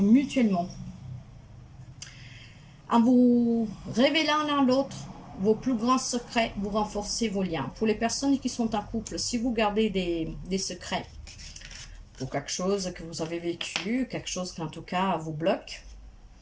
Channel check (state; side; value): identical; both; correlation 1.00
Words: mutuellement. En vous révélant l'un l'autre vos plus grands secrets, vous renforcez vos liens. Pour les personnes qui sont en couple, si vous gardez des secrets pour quelque chose que vous avez vécu, quelque chose qui en tout cas vous bloque,